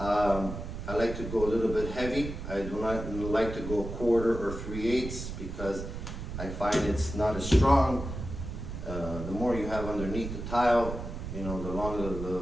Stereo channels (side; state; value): right; noise; rumble, 7 dB below the sound